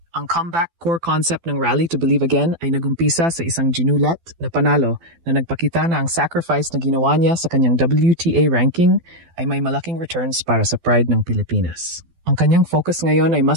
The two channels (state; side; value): late; left; 12 ms